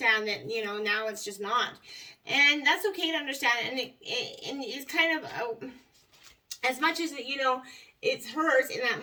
that, now it's just not. And that's okay to understand. And it's kind of, as much as, it hurts in that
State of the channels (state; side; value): identical; both; correlation 1.00